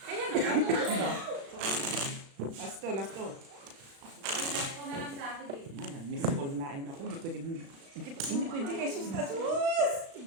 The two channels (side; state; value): left; late; 36 ms